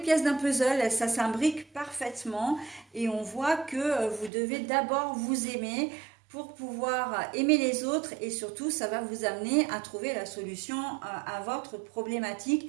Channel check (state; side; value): drops out; left; at 4.3 s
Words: d'un puzzle, ça s'imbrique parfaitement et on voit que vous devez d'abord vous aimer pour pouvoir aimer les autres et surtout, ça va vous amener à trouver la solution à votre